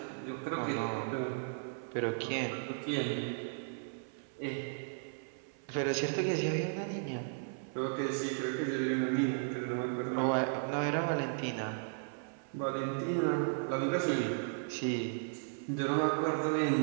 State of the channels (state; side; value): silent; left; 54 dB below the other